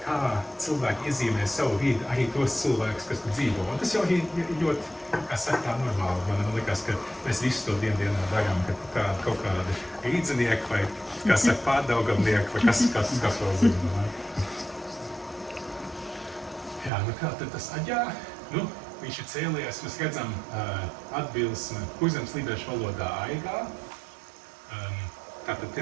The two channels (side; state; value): left; drops out; at 16.9 s